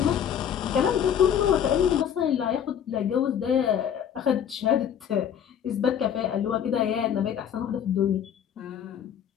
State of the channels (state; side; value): quieter; right; 8.9 dB